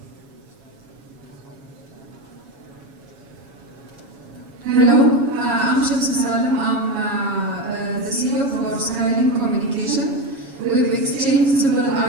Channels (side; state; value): left; late; 7.2 ms